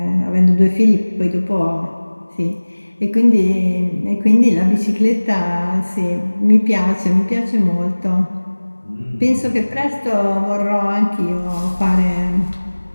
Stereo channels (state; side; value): inverted; both; correlation -1.00